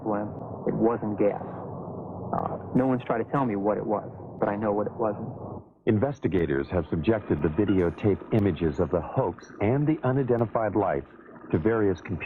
It wasn't gas. No one's tried to tell me what it was, but I know what it wasn't. Investigators have subjected the videotape images of the hoax and the unidentified lights to various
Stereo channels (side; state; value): both; identical; correlation 1.00